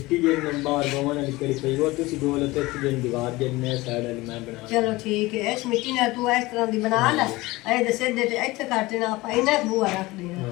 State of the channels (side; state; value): right; quieter; 20.6 dB